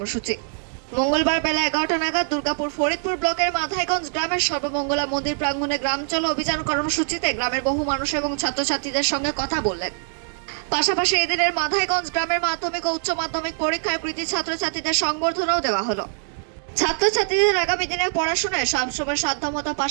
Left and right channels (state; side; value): silent; left; digital silence